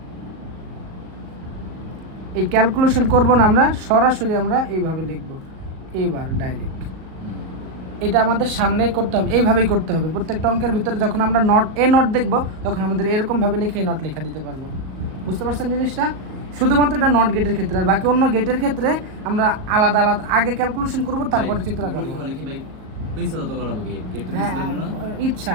এই ক্যালকুলেশন করব না আমরা, সরাসরি আমরা এইভাবে লিখব, এবার ডাইরেক্ট। এটা আমাদের সামনে করতে হবে, এইভাবেই করতে হবে। প্রত্যেকটা অঙ্কের ভিতরে যখন আমরা নট দেখব তখন আমাদের এরকমভাবে লিখে নট লেখা দিতে পারবো। বুঝতে পারছেন জিনিসটা? শুধুমাত্র এটা নট গেটের ক্ষেত্রে, আর বাকি অন্য গেটের ক্ষেত্রে আমরা আলাদা আলাদা আগে ক্যালকুলেশন করব, তারপরে চিত্র আঁকবো। বলে কি ভাই পেন্সিল তো করাবো কি গেট তো হ্যাঁ, পেন্সিল না ইচ্ছা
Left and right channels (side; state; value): left; late; 38 ms